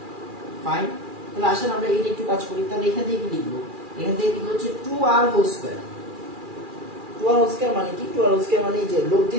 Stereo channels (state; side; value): late; left; 2.4 ms